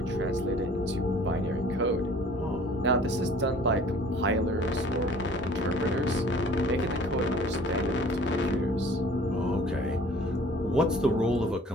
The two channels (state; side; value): normal; both; correlation 0.50